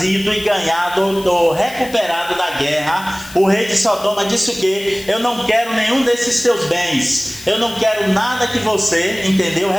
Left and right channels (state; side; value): noise; left; hiss, 17 dB below the sound